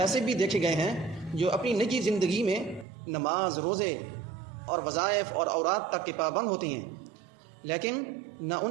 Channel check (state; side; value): drops out; left; at 2.9 s